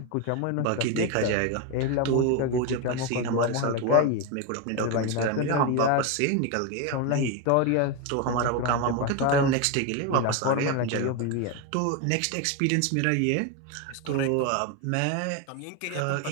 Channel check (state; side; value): different; both; correlation 0.02